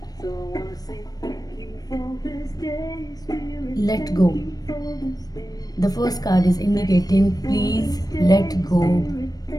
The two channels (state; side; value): late; right; 0.19 ms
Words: let go. The first card is indicating please let go